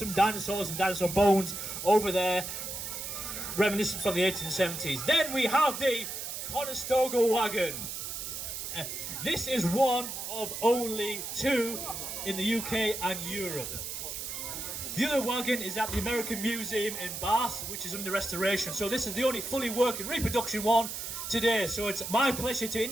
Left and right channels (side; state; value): right; noise; hiss, 6 dB below the sound